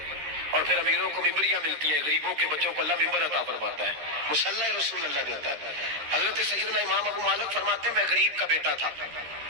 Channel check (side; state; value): left; late; 13 ms